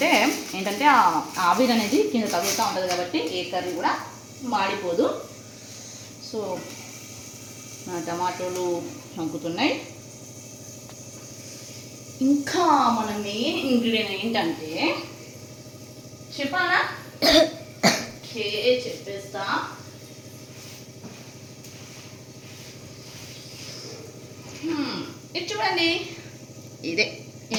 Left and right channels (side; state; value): both; identical; correlation 1.00